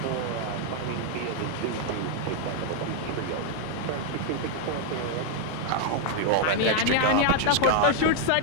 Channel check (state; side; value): different; both; correlation 0.00